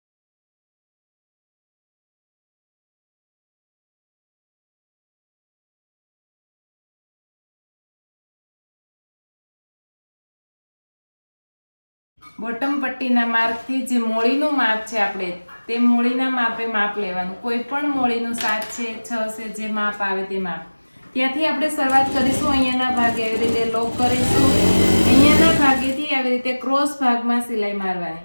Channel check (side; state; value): both; inverted; correlation -1.00